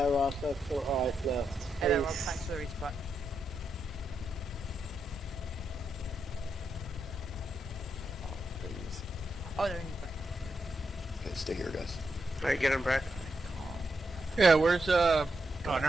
Ross, that's alright left. Hello, Rob, thanks for the resupply. Oh, they're in the back. Okay, stay here, guys. Alright, get him, Brad. Yeah, where's oh,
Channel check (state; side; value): normal; both; correlation 0.83